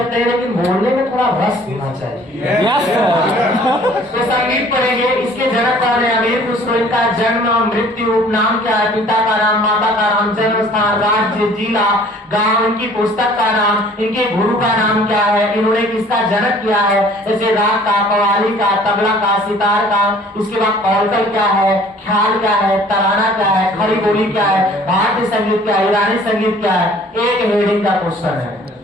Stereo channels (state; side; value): normal; both; correlation 0.53